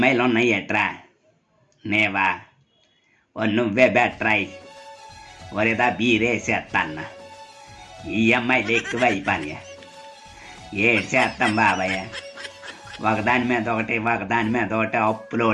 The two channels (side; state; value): both; identical; correlation 1.00